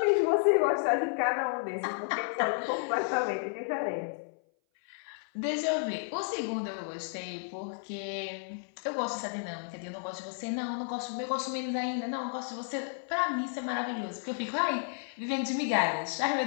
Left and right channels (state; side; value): silent; right; 56 dB below the other